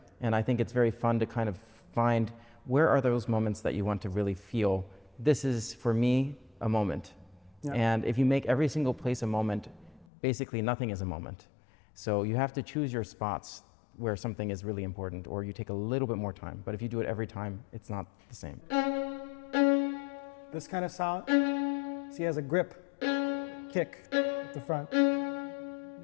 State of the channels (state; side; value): drops out; right; at 10.1 s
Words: And I think it's very fun to kind of find where are those moments that you want to really feel, this is, for me, a moment. Yeah. And if you make every single place a moment, basically nothing is a moment. So you have to choose your spots where something is really important, or you take a little bit more time. But if you do it every time, it's not the same. This kind of sound, see, has a grip, kick at the front,